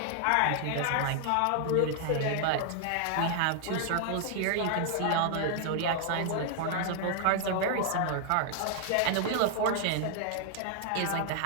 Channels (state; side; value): different; both; correlation -0.01